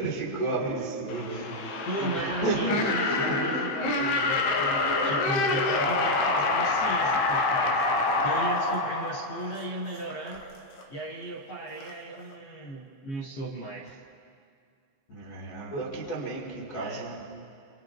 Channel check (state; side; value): late; right; 15 ms